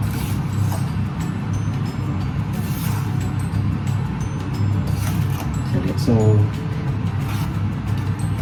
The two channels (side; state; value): both; identical; correlation 1.00